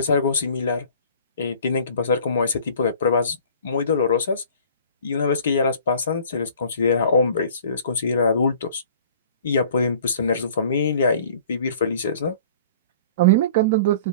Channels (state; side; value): inverted; both; correlation -0.48